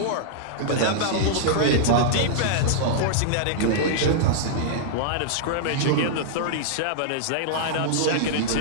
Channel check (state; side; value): different; both; correlation -0.01